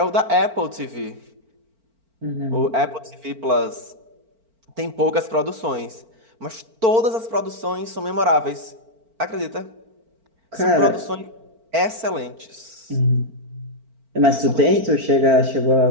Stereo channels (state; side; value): late; left; 4.4 ms